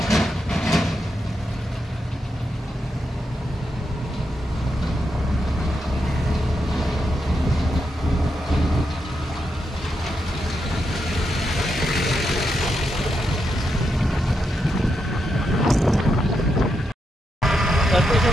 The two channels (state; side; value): normal; both; correlation 0.84